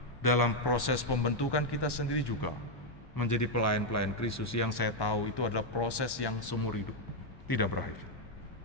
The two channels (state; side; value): late; right; 1.1 ms